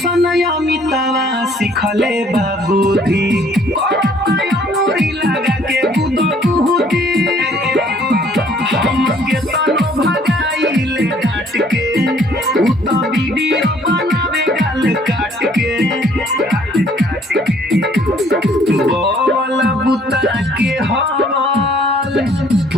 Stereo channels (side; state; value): both; normal; correlation 0.60